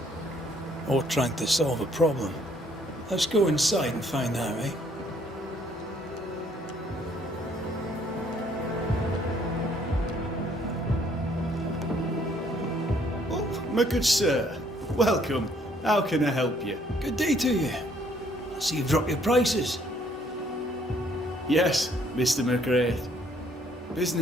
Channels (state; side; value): normal; both; correlation 0.64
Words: Or trying to solve a problem. Let's go inside and find out, eh? Oh, my good sir. Welcome. How can I help you? Good day to you. I see you've dropped your prices. Yes, Mr. McGrath.